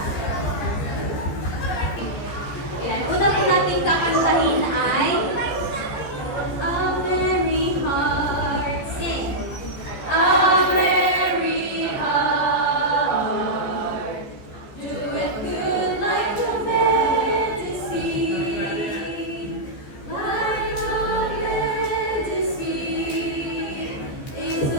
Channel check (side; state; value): right; late; 15 ms